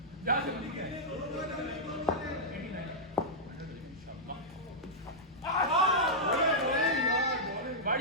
जा जल्दी है 89 बाढ़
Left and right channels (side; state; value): both; normal; correlation -0.07